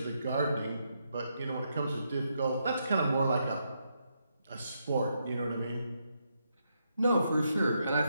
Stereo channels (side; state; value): both; inverted; correlation -0.80